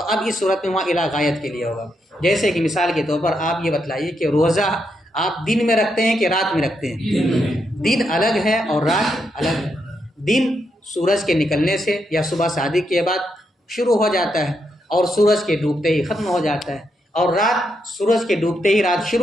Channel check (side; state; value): both; normal; correlation 0.81